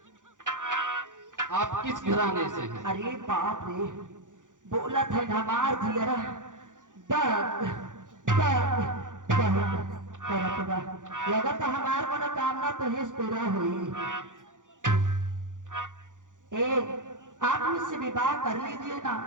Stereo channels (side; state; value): left; late; 0.87 ms